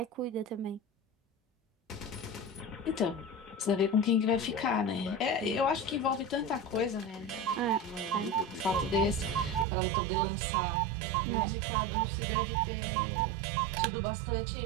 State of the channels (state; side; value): drops out; left; at 9.7 s